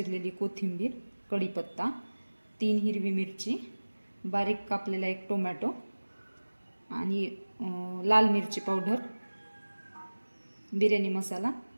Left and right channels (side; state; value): both; inverted; correlation -1.00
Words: कोथिंबीर, कढीपत्ता, 3 हिरवी मिरची, बारीक कापलेला 1 टोमॅटो आणि लाल मिरची पावडर, बिर्याणी मसाला,